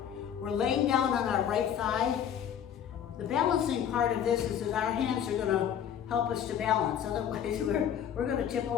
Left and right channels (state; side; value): quieter; right; 9.1 dB